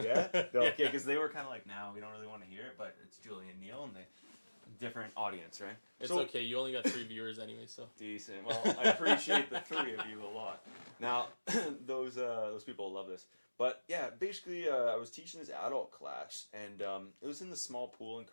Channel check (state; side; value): inverted; both; correlation -1.00